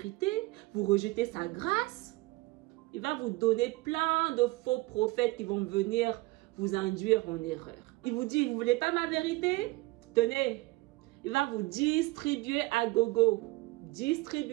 vous rejetez sa grâce. Il va vous donner plein de faux prophètes qui vont venir vous induire en erreur. Il vous dit, vous ne voulez pas ma vérité? Tenez, il va vous distribuer à gogo.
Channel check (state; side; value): quieter; left; 21.0 dB